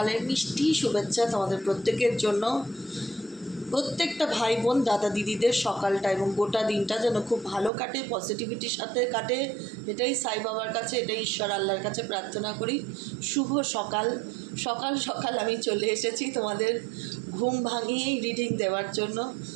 মিষ্টি শুভেচ্ছা তোমাদের প্রত্যেকের জন্য। প্রত্যেকটা ভাই বোন দাদা দিদিদের সকালটা এবং গোটা দিনটা যেন খুব ভালো কাটে, পজিটিভিটির সাথে কাটে, এটাই সাই বাবার কাছে, এটাই ঈশ্বর আল্লাহর কাছে প্রার্থনা করি। শুভ সকাল। সকাল সকাল আমি চলে এসেছি তোমাদের ঘুম ভাঙিয়েই রিডিং দেওয়ার জন্য।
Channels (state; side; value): drops out; left; at 7.7 s